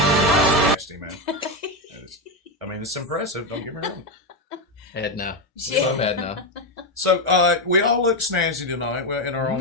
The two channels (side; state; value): both; normal; correlation 0.09